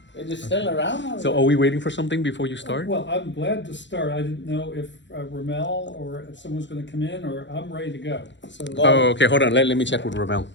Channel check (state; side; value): late; right; 0.53 ms